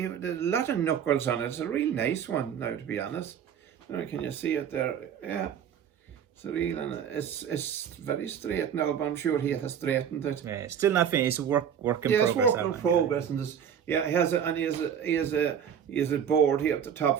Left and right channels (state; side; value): quieter; left; 8.4 dB